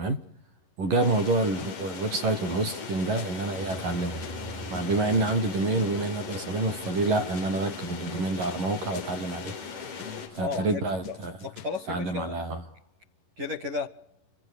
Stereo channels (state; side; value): late; left; 11 ms